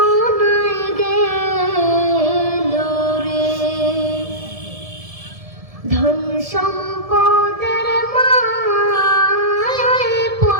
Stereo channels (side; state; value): left; late; 1.7 ms